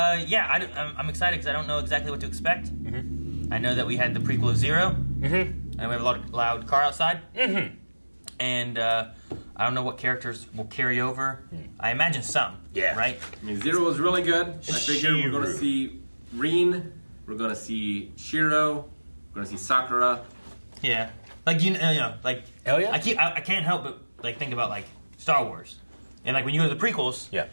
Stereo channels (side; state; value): both; inverted; correlation -1.00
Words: excited because I don't know exactly what to expect. I know that we had the prequel of Zero. And we have a lot of loud car outside. And I don't know what characters will carry over. I imagine some. Yeah. Right? I mean, Zero was really good. I figure we're going to Shiru. see Rin. We're going to see Shiro. We're going to see Sakura. Yeah. Like, you know, like... Hell yeah. I can't help but, like, think about, like, Star Wars. And, like, when you go to the prequels... Yeah.